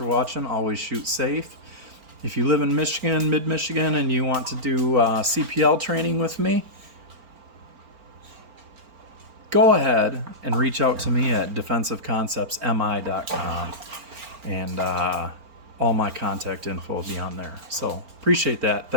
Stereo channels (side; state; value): left; late; 4.4 ms